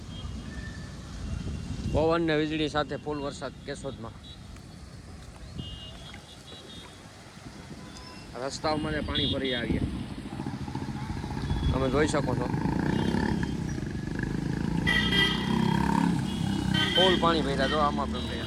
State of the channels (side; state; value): both; identical; correlation 1.00